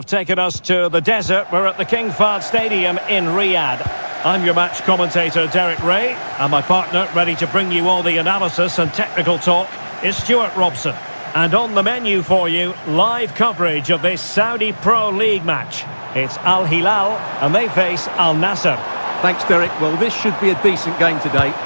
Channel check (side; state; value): both; inverted; correlation -1.00